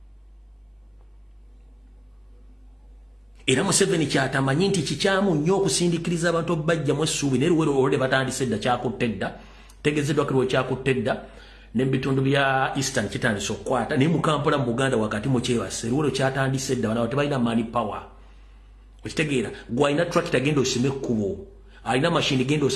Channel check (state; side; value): identical; both; correlation 1.00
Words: Era Museveni kyatamanyi nti kikyamu nnyo okusindikiriza abantu bajja mu essuubi naye luwero olwedde batandise dda kyakutte dda tegezeddwa kiriwo kyakutte dda n'ebitundu bya Eastern kitandise okukwata naye mu Kampala mu Buganda wakati mu kyebase luwero kyatandise dda banawo tebalina money power. Okitegeera gwe alina tractor genda osime ekkubo alina mashini genda